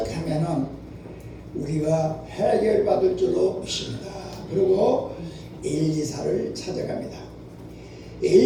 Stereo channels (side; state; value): both; identical; correlation 1.00